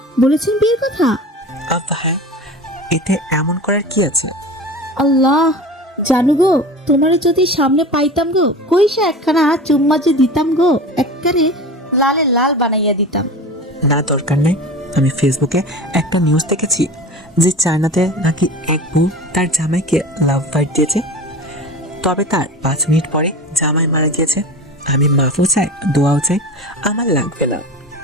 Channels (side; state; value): both; normal; correlation 0.33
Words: বলেছেন বিয়ের কথা? হ্যাঁ, এতে এমন করার কি আছে? আল্লাহ জানু গো, তোমারে যদি সামনে পাইতাম গো, কইসা একখানা চুম্মা যে দিতাম গো, একবারে লালে লাল বানাইয়া দিতাম। না, দরকার নেই। আমি ফেসবুকে একটা নিউজ দেখেছি যে চায়নাতে নাকি এক বউ তার জামাইকে লাভ বাইট দিয়েছে, তবে তার 5 মিনিট পরে জামাই মারা গিয়েছে। আমি মাফও চাই, দোয়াও চাই, আমার লাগবে না।